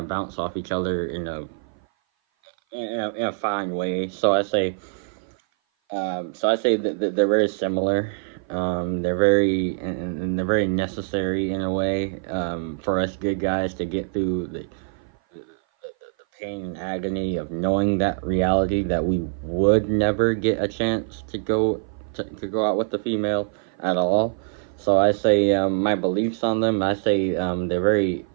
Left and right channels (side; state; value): left; silent; 56 dB below the other